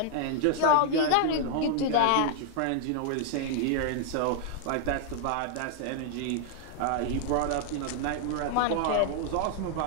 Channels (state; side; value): different; both; correlation -0.01